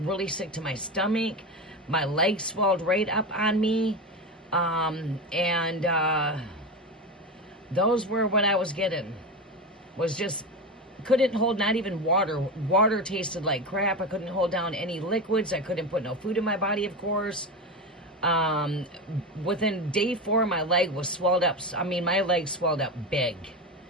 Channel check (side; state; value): both; normal; correlation 0.20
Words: really sick to my stomach. My leg swelled right up on me. Those were what I was getting. Was just, couldn't hold not even water. Water tasted like crap. I couldn't hold down any liquids. I couldn't put no food in my body, of course. Within day 4, my leg was swelled up. I mean, my leg swelled up big.